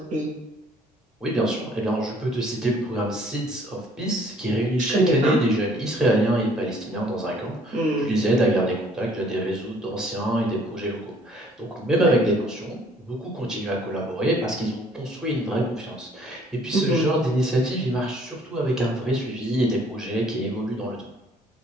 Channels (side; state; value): both; normal; correlation 0.59